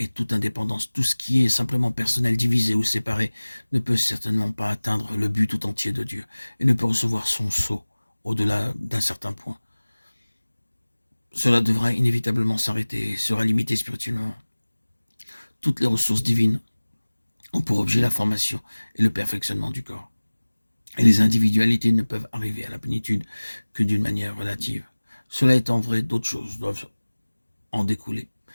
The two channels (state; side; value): inverted; both; correlation -1.00